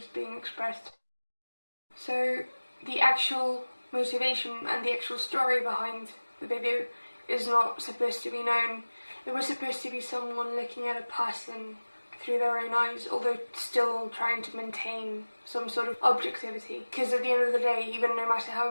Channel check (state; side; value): inverted; both; correlation -1.00